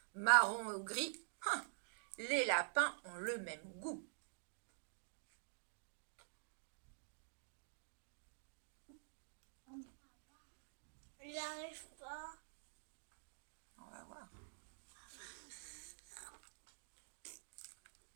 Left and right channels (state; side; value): silent; left; digital silence